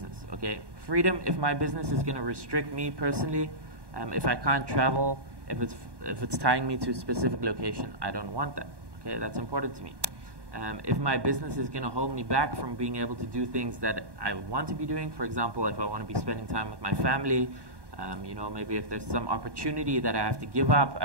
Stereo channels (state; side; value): late; left; 1.1 ms